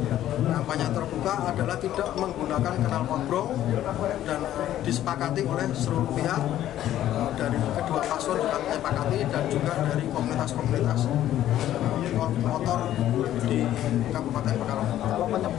terbuka adalah tidak menggunakan knalpot brong dan disepakati oleh seluruh pihak dari kedua paslon juga disepakati dan juga dari komunitas-komunitas motor di Kabupaten Pekalongan. Kalau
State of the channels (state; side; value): quieter; right; 12.5 dB